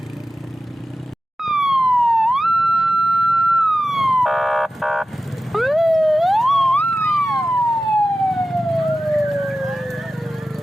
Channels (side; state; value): both; normal; correlation 0.94